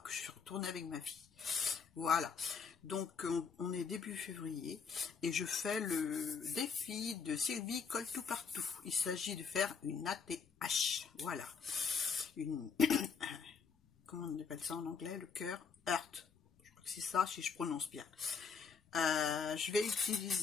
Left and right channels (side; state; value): right; quieter; 5.9 dB